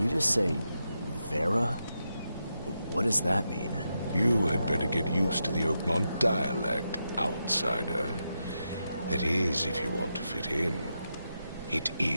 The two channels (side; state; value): both; inverted; correlation -0.86